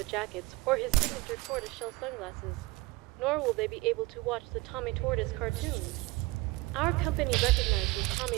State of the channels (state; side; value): quieter; left; 22.0 dB